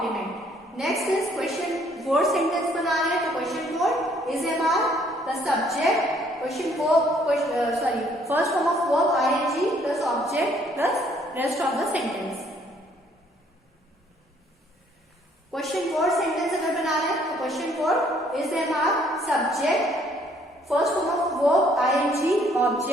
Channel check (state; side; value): normal; both; correlation 0.64